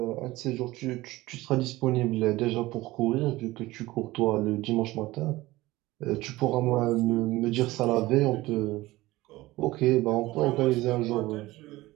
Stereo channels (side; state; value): left; quieter; 18.6 dB